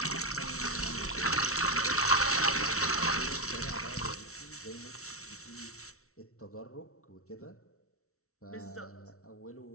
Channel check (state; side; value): late; right; 0.63 ms